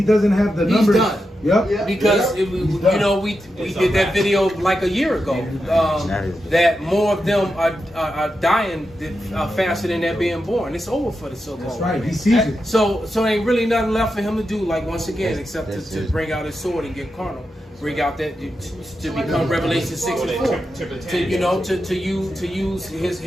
doesn't have the numbers. He's done. Yep. Because we did that video like a year ago. That more of them are dying faster than they're being born. It's over for the so-called. That's right. He sees it. So ain't really nothing left for him to do. Like once again, except to bring out his sword and get carnal. Bring out that to become Revelation 6:4. To use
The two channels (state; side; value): normal; both; correlation 0.88